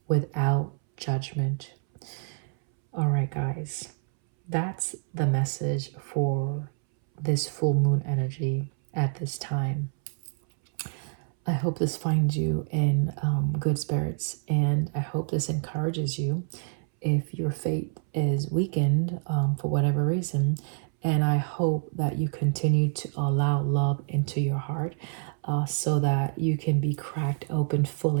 without judgment. All right, guys, that's the message for this full moon energy at this time. I hope this finds you in good spirits, and I hope this encourages you if your faith is weakened for whatever reason. And I hope that you continue to allow love into your heart so that you can be cracked open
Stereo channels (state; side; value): silent; left; 60 dB below the other